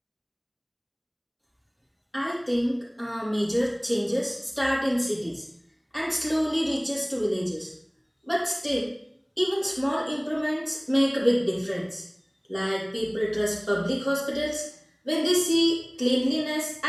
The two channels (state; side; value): identical; both; correlation 1.00